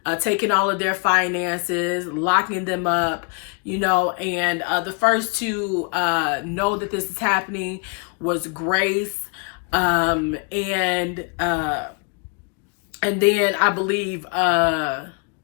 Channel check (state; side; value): quieter; right; 37.3 dB